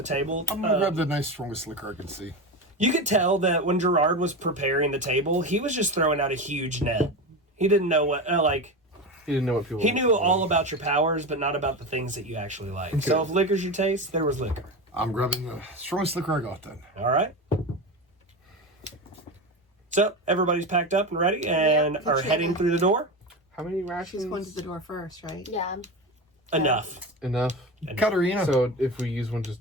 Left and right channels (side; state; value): both; normal; correlation 0.22